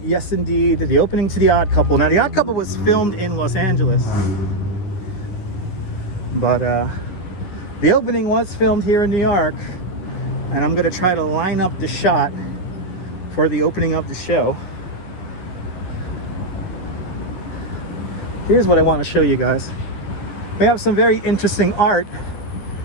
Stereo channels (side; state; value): right; late; 10 ms